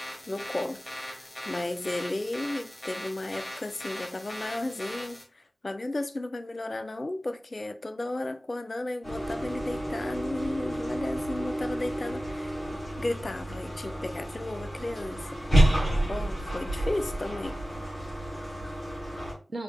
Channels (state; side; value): normal; both; correlation 0.95